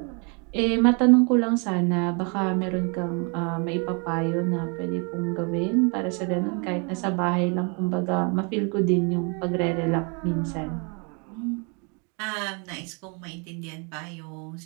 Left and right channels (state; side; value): quieter; left; 34.7 dB